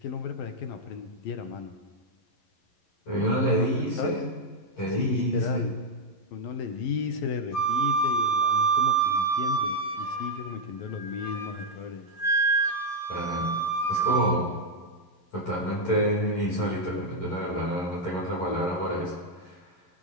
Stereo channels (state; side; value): late; right; 11 ms